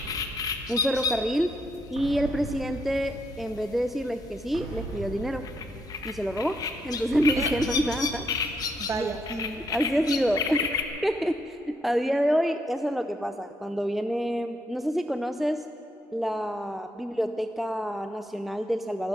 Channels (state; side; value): normal; both; correlation 0.77